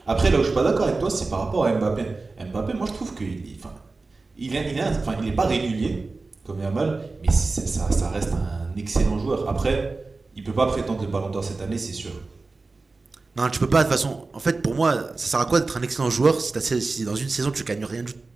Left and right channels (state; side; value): quieter; left; 3.7 dB